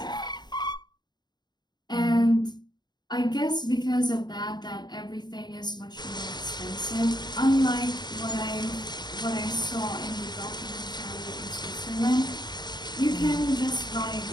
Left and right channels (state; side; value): late; right; 0.21 ms